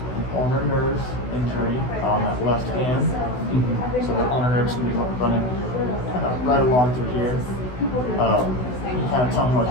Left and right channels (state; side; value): late; right; 16 ms